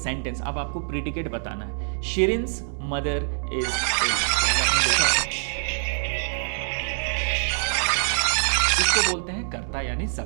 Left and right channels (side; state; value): left; silent; digital silence